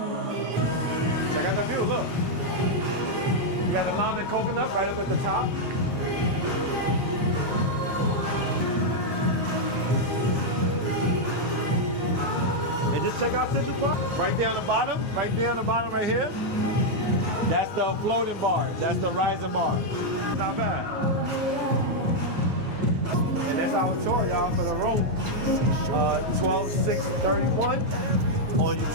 Look. You got the lime and coconut right up at the top. And just check out Central Park. Right there on the bottom right here. That's the floating bar. That's the rising bar. Not bad. And that's our tour, y'all, for the room. 12/6/31 on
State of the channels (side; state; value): left; late; 9.2 ms